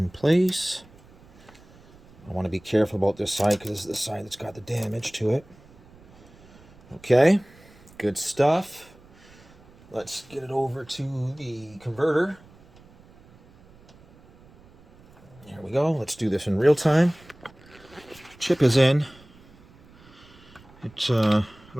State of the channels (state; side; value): noise; right; rumble, 25 dB below the sound